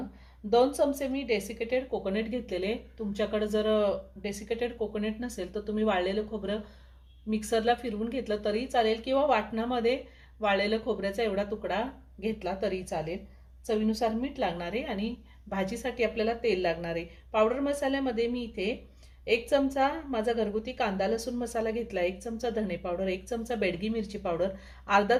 2 चमचे मी डेसिकेटेड कोकोनट घेतलेले। तुमच्याकडे जर डेसिकेटेड कोकोनट नसेल तर तुम्ही वाळलेलं खोबरं मिक्सरला फिरवून घेतलं तरी चालेल किंवा वाटणामध्ये वाळलेलं खोबऱ्याचा एवढा तुकडा घेतला तरी चालेल। चवीनुसार मीठ लागणार आहे आणि भाजीसाठी आपल्याला तेल लागणार आहे। पावडर मसाल्यामध्ये मी इथे 1 चमचा माझा घरगुती कांदा लसूण मसाला घेतला, 1 चमचा धणे पावडर, 1 चमचा बेडगी मिरची पावडर, अर्धा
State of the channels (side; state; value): both; identical; correlation 1.00